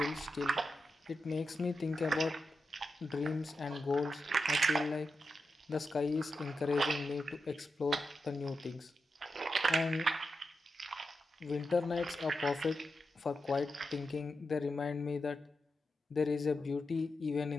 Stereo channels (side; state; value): both; normal; correlation 0.88